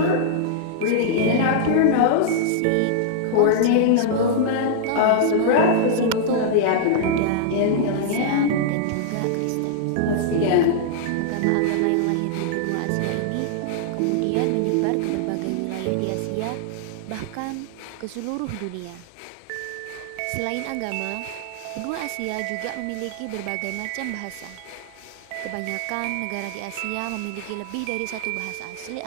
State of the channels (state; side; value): different; both; correlation -0.01